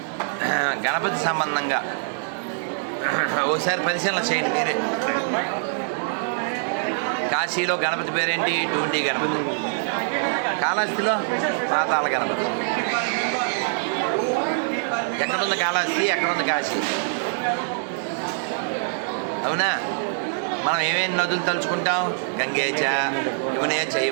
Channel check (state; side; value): silent; left; 63 dB below the other